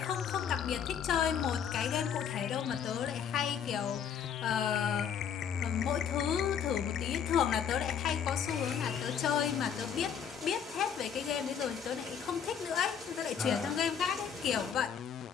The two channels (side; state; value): right; quieter; 7.9 dB